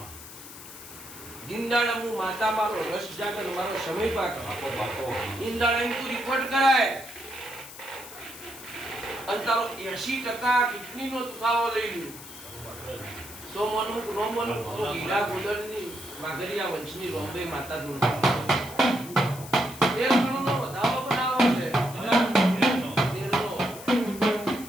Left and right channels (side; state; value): left; noise; hiss, 15 dB below the sound